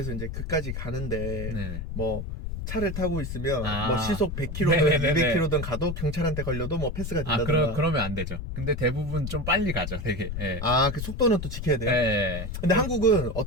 이제 그까지 가는데 뭐 차를 타고 있으면 뭐 시속 100km든 200km든 가도 경찰한테 걸려도 뭐 패스가 된다든가. 그러면 안 되죠. 근데 대부분 좀 빨리 가죠, 되게. 그 속도는 또 지켜야 돼요. 근데 한국은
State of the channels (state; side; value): noise; left; rumble, 6 dB below the sound